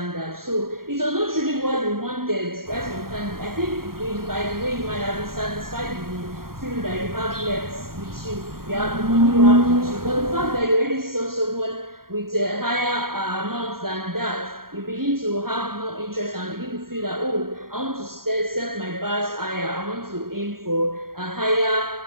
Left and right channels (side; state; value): left; late; 0.93 ms